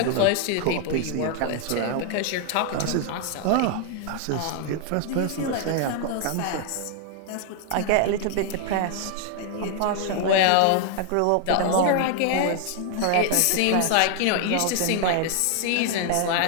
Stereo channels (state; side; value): different; both; correlation 0.00